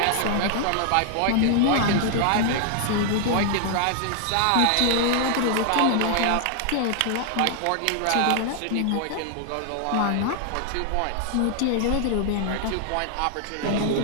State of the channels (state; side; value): different; both; correlation 0.00